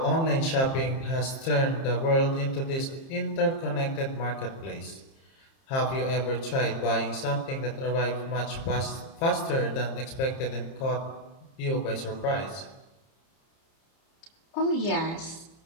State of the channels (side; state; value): right; late; 30 ms